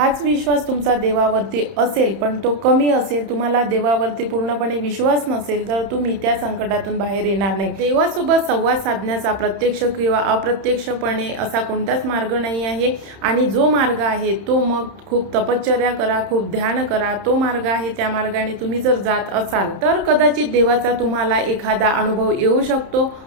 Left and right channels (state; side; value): late; left; 31 ms